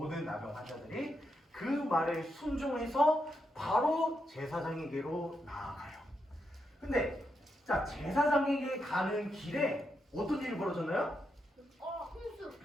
나병 환자들이 그 말에 순종해서 바로 제사장에게로 나아가요. 근데 자, 제사장에게 가는 길에 어떤 일이 벌어졌나요? 홍수.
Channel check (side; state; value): both; normal; correlation 0.83